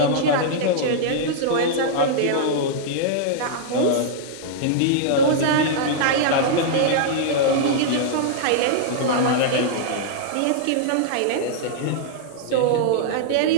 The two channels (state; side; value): different; both; correlation -0.02